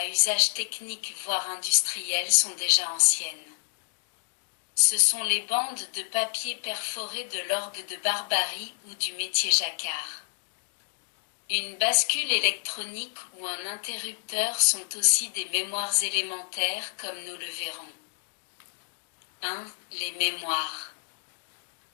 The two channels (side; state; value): right; silent; digital silence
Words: usage technique voire industriel sont déjà anciennes. Ce sont les bandes de papier perforées de l'orgue de Barbarie ou du métier jacquard. Une bascule électronique ou un interrupteur sont aussi des mémoires élémentaires comme nous le verrons. 1. Les mémoires.